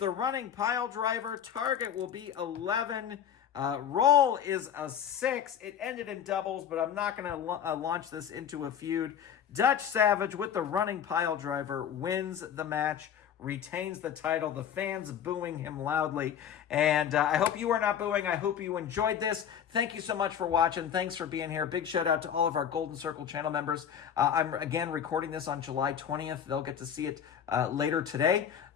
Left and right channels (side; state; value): right; quieter; 8.8 dB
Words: running pile driver. Target will be 11. Roll is a 6. It ended in doubles, but I'm not going to launch this into a feud. Dutch Savage with the running pile driver wins the match, retains the title. The fans booing him loudly. And I hope you are not booing. I hope you enjoyed this. Thank you so much for watching. Thanks for being here. Big shout out to all of our Golden Circle channel members. I'm, again, recording this on July 20th. They'll get to see it later today.